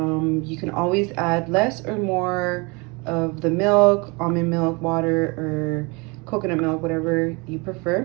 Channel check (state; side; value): quieter; left; 28.2 dB